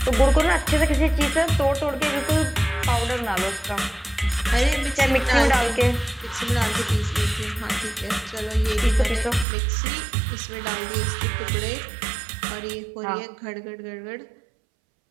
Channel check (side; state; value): left; drops out; at 9.5 s